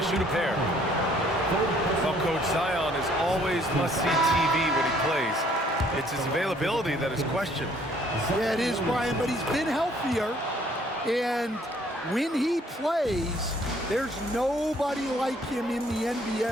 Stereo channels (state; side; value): normal; both; correlation 0.61